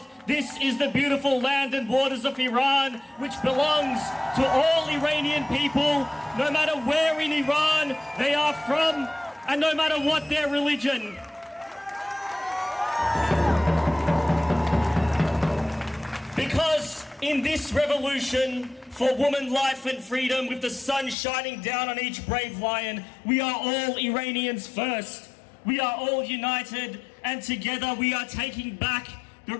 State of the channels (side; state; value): right; drops out; at 21.2 s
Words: This is the beautiful land and waters of Iran, which belongs to all Iranian people, no matter where in Iran they are from, and no matter what their religion. Because in this revolution for woman, life and freedom, with the sun shining down on each brave lion, we are all Iranians first. We are all united, and together we are taking back